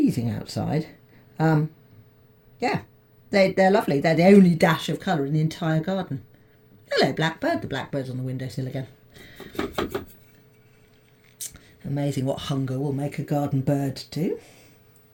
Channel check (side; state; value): both; identical; correlation 1.00